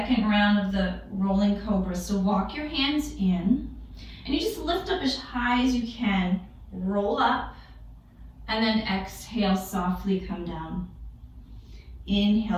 round of the rolling cobra. So walk your hands in. And you just lift up as high as you can. Roll up. And then exhale, softly come down.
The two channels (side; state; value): both; identical; correlation 1.00